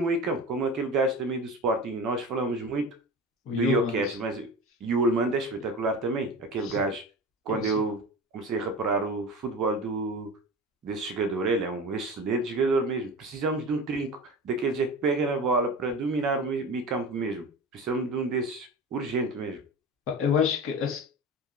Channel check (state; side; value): normal; both; correlation 0.31